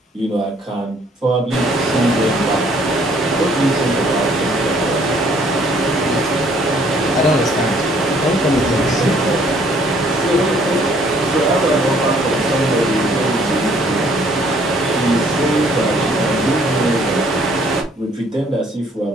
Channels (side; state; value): both; normal; correlation 0.62